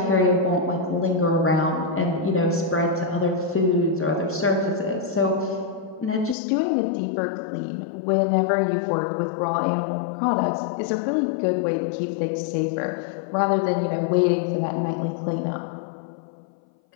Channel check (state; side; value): drops out; right; at 6.4 s